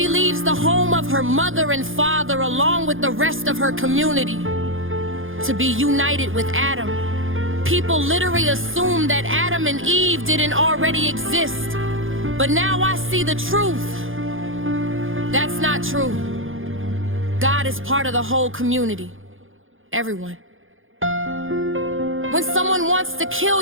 leaves the home of her mother and father along with the rest of her community to be united with Adam. People literally assume that Adam and Eve didn't already exist, but now I see the truth. That's not true. God is part of the whole community, everyone. When someone wants to kill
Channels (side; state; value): left; late; 0.59 ms